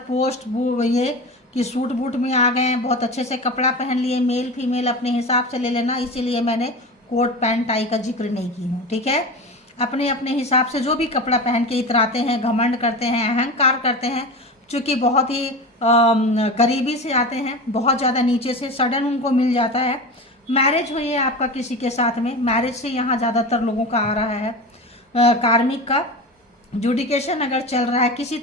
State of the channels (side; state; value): both; normal; correlation 0.28